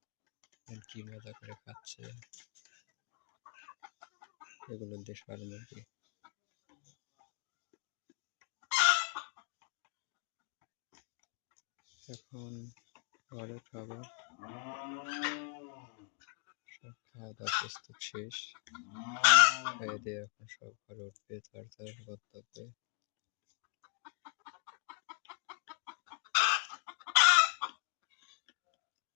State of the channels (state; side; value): quieter; right; 39.3 dB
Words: কি মজা করে খাচ্ছে এগুলো দেশাল মুরগি। এখন ঘরে খাবার, সব খাওয়া দাওয়া প্রস্তুত শেষ। খেয়ে দিয়ে এখন সব ঘরে উঠবে, তার গন্তব্যে।